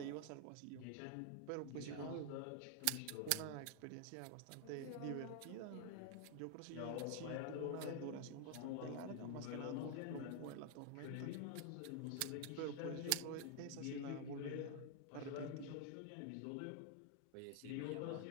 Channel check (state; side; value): different; both; correlation 0.00